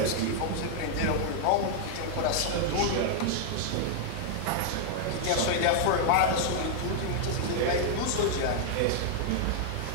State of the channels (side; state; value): both; different; correlation -0.01